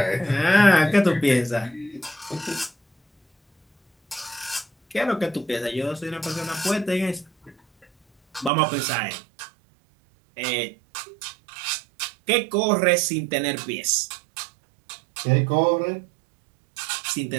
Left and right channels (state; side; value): drops out; left; at 8.5 s